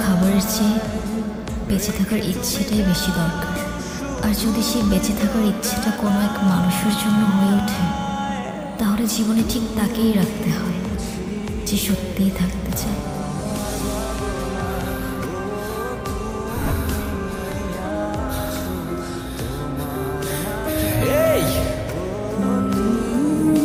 খাবারের চেয়ে বেঁচে থাকার ইচ্ছেটাই বেশি দরকার। আর যদি সেই বেঁচে থাকার ইচ্ছেটা কোনো এক মানুষের জন্য হয়ে ওঠে, তাহলে জীবনে ঠিক তাকেই রাখতে হয় যে সত্যিই থাকতে চায়। এই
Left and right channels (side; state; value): both; identical; correlation 1.00